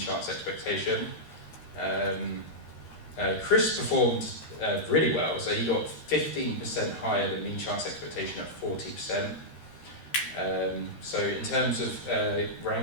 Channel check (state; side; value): late; right; 13 ms